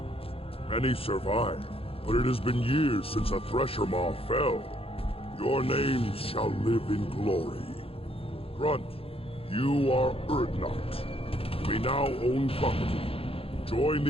Many survive, but it has been years since a Thresher Maw fell. Your names shall live in glory. Grunt, you are Urdnot. We now own property. Join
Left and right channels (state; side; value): late; right; 0.27 ms